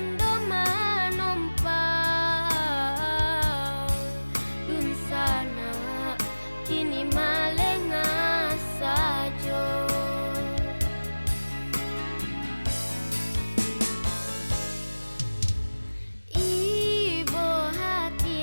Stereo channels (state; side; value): inverted; both; correlation -1.00